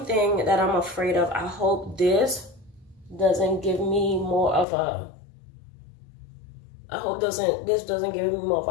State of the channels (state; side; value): drops out; right; at 4.7 s